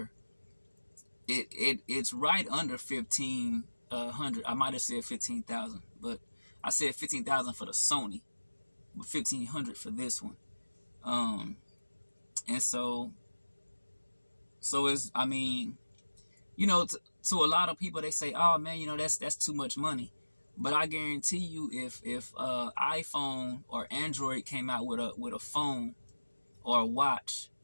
it's right under 1,500. I might have said 15,000, but I said 15,000 for the Sony, but 1,500 for this one. And so it's, I mean, to a lot of people, they say, oh man, that's too much money. But I guarantee you, if iPhone or Android came out with a phone or a watch,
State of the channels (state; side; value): inverted; both; correlation -1.00